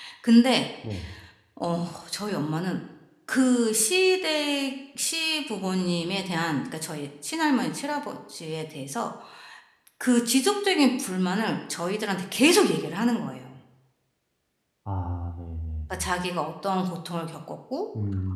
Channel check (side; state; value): both; identical; correlation 1.00